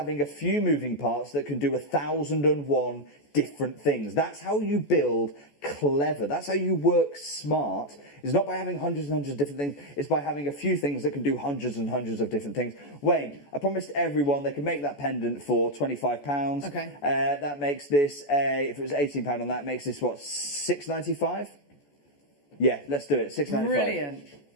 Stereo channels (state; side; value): late; right; 14 ms